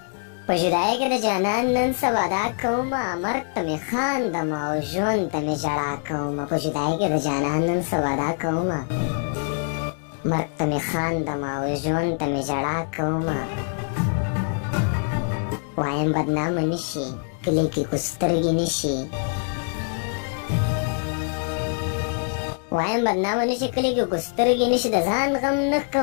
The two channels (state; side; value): silent; right; 62 dB below the other